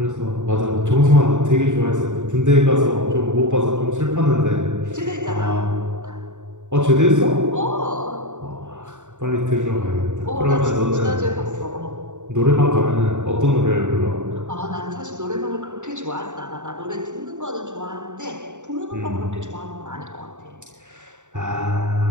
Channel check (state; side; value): late; left; 0.85 ms